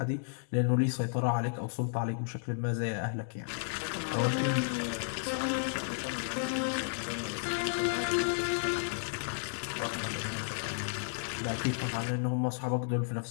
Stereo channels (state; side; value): silent; right; digital silence